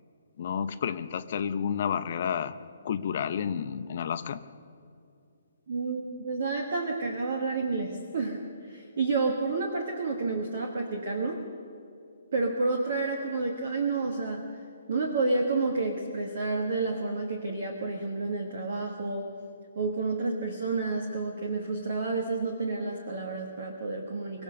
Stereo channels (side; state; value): both; inverted; correlation -0.65